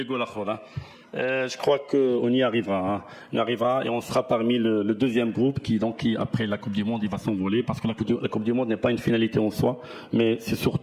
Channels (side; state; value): both; identical; correlation 1.00